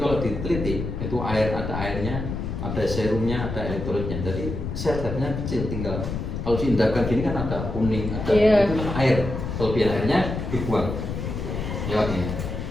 diteliti itu air, ada airnya, ada serumnya, ada elektrolitnya. Jadi zat-zatnya kecil, tinggal kalau diindahkan gini kan ada kuning, ada itu kan air. Kelebihan airnya dibuang lewat ini.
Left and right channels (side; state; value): left; noise; rumble, 4 dB below the sound